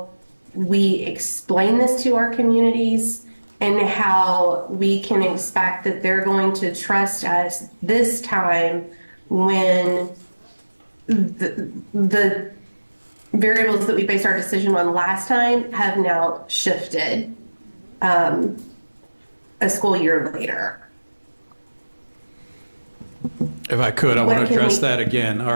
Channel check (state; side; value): inverted; both; correlation -1.00